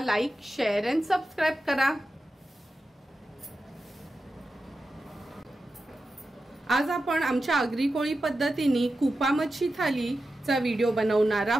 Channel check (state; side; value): normal; both; correlation 0.91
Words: शेअर आणि सबस्क्राइब करा। आज आपण आमच्या आगरी कोळी पद्धतीने कुपा मच्छी थालीचा व्हिडिओ बनवणार